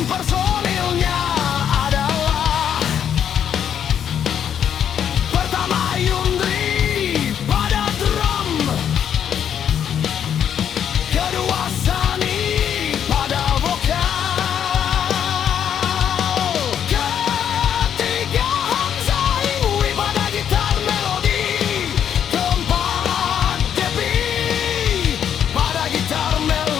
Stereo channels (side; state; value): right; quieter; 8.9 dB